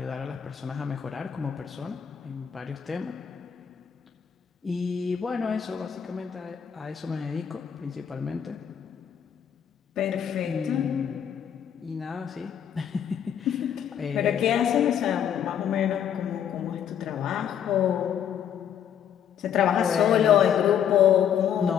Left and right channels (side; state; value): right; quieter; 8.8 dB